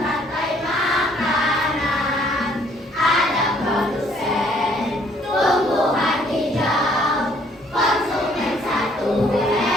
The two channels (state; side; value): normal; both; correlation 0.63